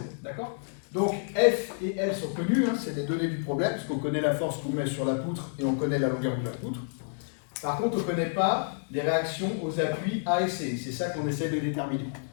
D'accord? Donc F et L sont connus, hein, c'est les données du problème, parce qu'on connaît la force qu'on met sur la poutre et on connaît la longueur de la poutre. Par contre, on ne connaît pas les réactions aux appuis A et C. C'est ça qu'on essaie de déterminer.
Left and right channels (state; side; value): silent; right; digital silence